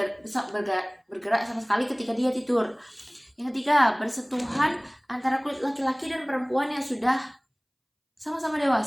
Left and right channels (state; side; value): identical; both; correlation 1.00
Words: bergerak sama sekali ketika dia tidur. Yang ketiga, bersentuhan antara kulit laki-laki dan perempuan yang sudah sama-sama